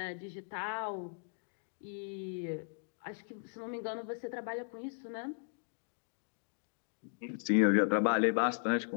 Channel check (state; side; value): silent; right; digital silence